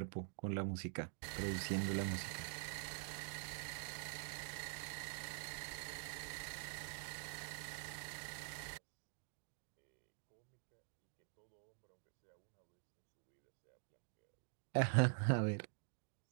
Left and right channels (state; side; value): silent; left; digital silence